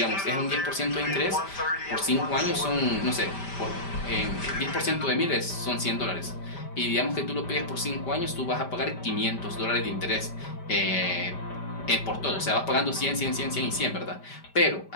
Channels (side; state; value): right; late; 5.1 ms